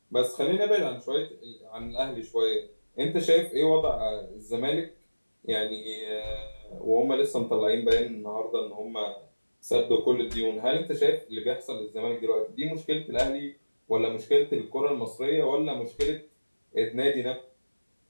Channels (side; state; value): both; inverted; correlation -1.00